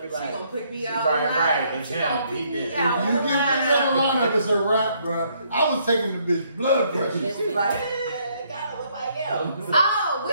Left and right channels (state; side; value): inverted; both; correlation -0.69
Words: like, she gonna pick me out. Right, it's him. He did. You get picked out of line, it's a wrap, bro. I was taking the bitch blood pressure. She's like, it gotta look like him. Oh,